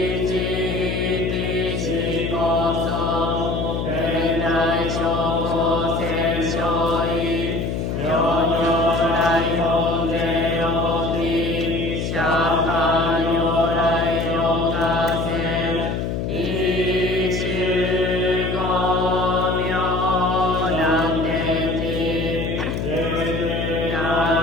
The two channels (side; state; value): left; noise; hum, 2 dB below the sound